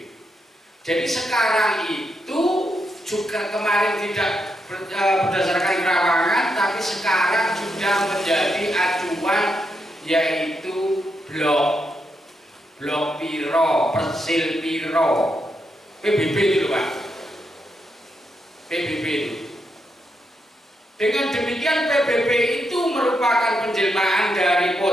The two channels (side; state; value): both; normal; correlation 0.82